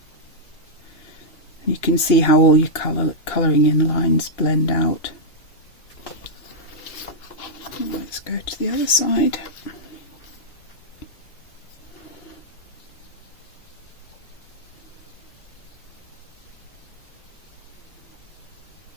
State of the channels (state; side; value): late; right; 2.9 ms